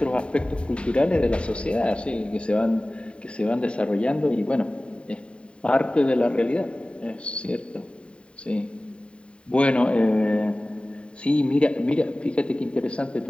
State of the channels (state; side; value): late; right; 0.056 ms